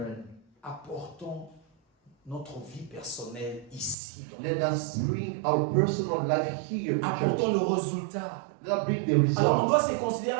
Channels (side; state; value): left; drops out; at 4.0 s